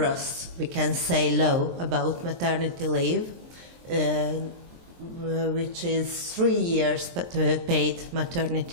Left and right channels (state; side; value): late; left; 23 ms